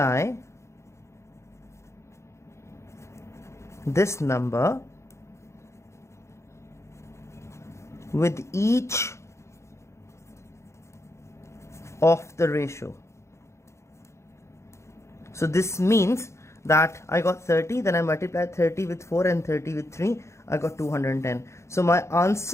this number with each of the ratio. So this means that I got 30, then I multiplied 30 with 4 and 30 with 3, I got 210. So my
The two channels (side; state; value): right; late; 0.14 ms